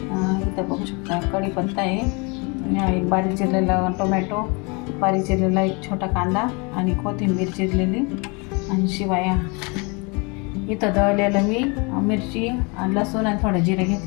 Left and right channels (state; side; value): quieter; right; 30.3 dB